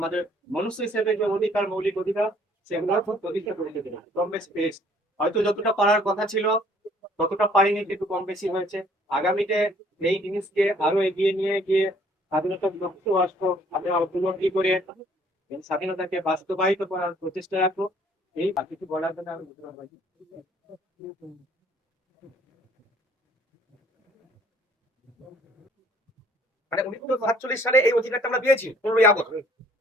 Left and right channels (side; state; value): both; normal; correlation 0.59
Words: মনুষ্য হিসেবে যে অধিকার, মৌলিক অধিকার, সেগুলোর খুব প্রতিষ্ঠা করে দিতে কম বেশি পেয়েছি। হয়তো যতটা পারার কথা ছিল ততটা পারিনি, কিন্তু কম বেশি হয়েছে। আগামীতে এই জিনিসকে আরো এগিয়ে নিয়ে গিয়ে স্বাধীনতার লক্ষ্য রাষ্ট্র আমরা উপলব্ধি করে স্বাধীনতাকে বাস্তবায়িত করার প্রচেষ্টা রাখবো। এই কিছু বলার জন্য আমি মানে 1947 সালে এই অধিকারটা আমরা পেয়েছি 15ই আগস্ট।